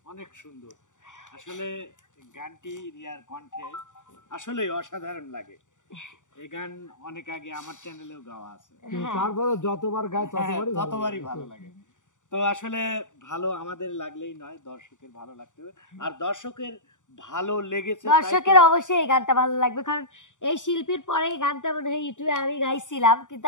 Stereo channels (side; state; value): right; late; 0.86 ms